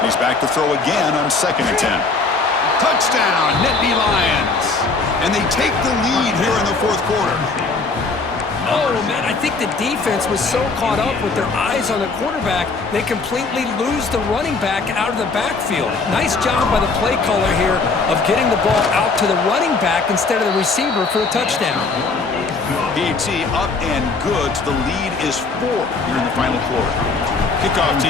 He's back to throw again on 2nd and 10. Touchdown, Nittany Lions. And they take the lead here in the fourth quarter. Oh, man, I think the defense was so caught up with their eyes on the quarterback, they completely lose the running back out of the backfield. Nice job by the play caller here of getting the ball out to the running back instead of the receiver for a touchdown. PAT up and good. The lead is 4 here in the final quarter. Kickoff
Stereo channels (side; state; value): right; quieter; 4.1 dB